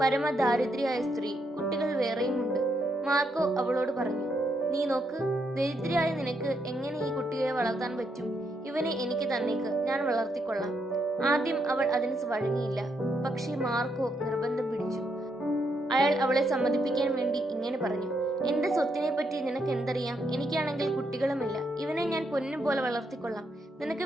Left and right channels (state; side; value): normal; both; correlation 0.78